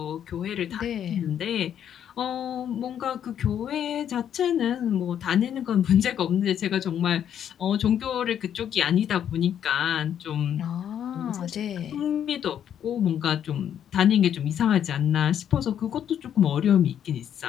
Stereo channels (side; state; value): right; quieter; 9.5 dB